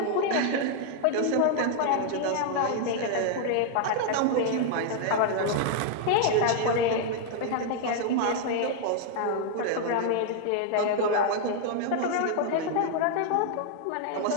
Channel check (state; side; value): different; both; correlation 0.00